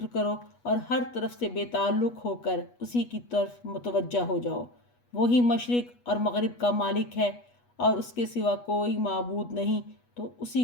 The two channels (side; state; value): right; late; 8.2 ms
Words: کرو اور ہر طرف سے بے تعلق ہو کر اسی کی طرف متوجہ ہو جاؤ۔ وہی مشرق اور مغرب کا مالک ہے اور اس کے سوا کوئی معبود نہیں، تو اسی